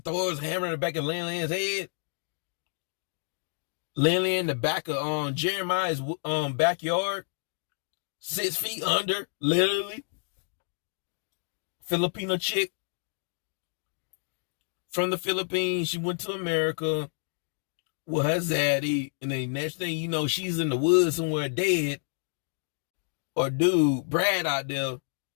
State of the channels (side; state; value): right; silent; digital silence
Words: hammer in the back of Lin Lin's head. Lin Lin in the back of Jeremiah's backyard. 6 feet under, literally. Filipino chick from the Philippines. She went to America with her zaddy, and then next thing you know, she's in the woods somewhere dead. Or dude, Brad out there